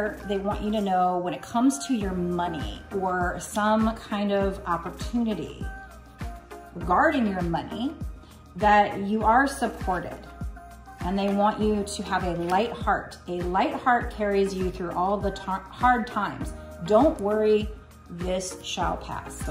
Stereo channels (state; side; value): identical; both; correlation 1.00